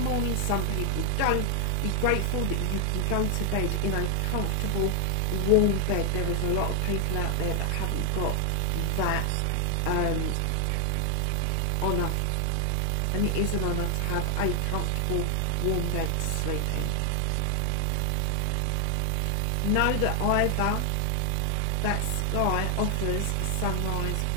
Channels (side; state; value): both; different; correlation 0.00